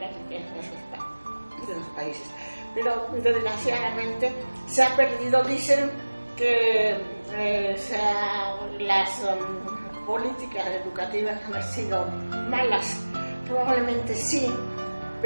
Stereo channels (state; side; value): inverted; both; correlation -1.00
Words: riqueza de los países. Pero desgraciadamente se ha perdido. Dicen que las políticas educativas han sido malas. Probablemente sí,